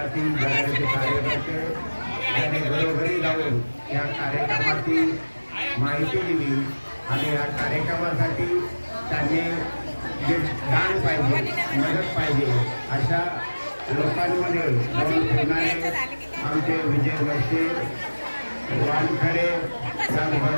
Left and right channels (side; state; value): both; inverted; correlation -1.00